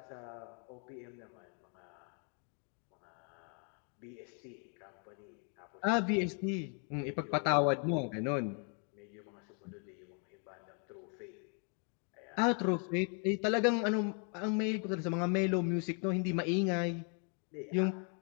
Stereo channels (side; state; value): right; quieter; 38.8 dB